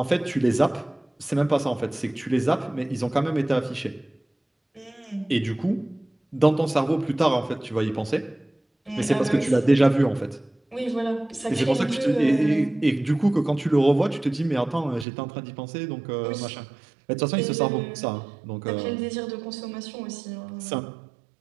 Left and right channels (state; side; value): drops out; left; at 15.1 s